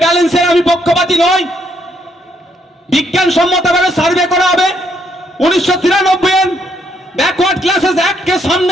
ব্যালেন্সের আমি পক্ষপাতী নই। বিজ্ঞানসম্মতভাবে সার্ভে করা হবে। 1993 এর ব্যাকওয়ার্ড ক্লাসেস অ্যাক্টকে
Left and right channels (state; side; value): normal; both; correlation 0.73